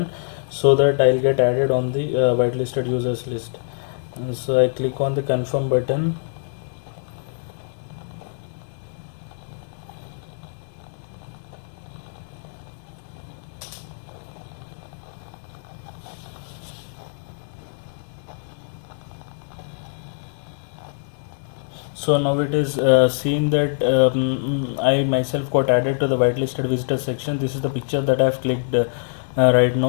so that I'll get added on the whitelisted users list. And so I click on the confirm button. So now it is seeing that I myself got added to the whitelisted visitor section. This is the picture that I have clicked right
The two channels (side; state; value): right; silent; digital silence